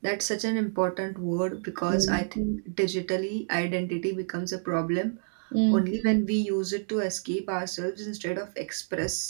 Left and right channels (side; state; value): left; silent; digital silence